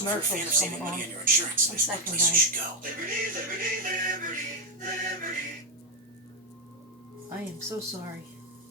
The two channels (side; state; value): both; normal; correlation 0.03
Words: coming on. 1 second, guys. I am so sorry.